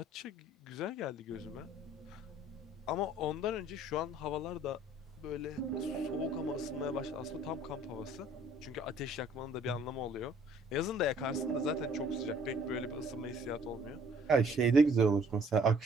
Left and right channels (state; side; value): normal; both; correlation 0.57